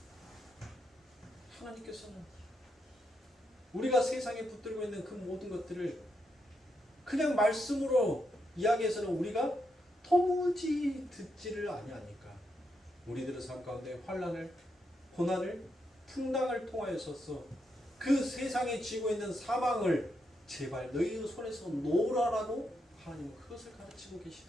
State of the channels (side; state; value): both; normal; correlation 0.82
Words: 하나님께서는 우리가 세상에 붙들고 있는 그 모든 것들을 그냥 말씀으로 이야기해서는 우리가 도무지 듣지를 아니하니까 우리들의 삶 가운데 환난을, 고난을, 풍랑을 통하여서 그 세상에 쥐고 있는 사망을 제발 너희의 손에서 놓으라라고 하나님은 그것을 가르치고 계시는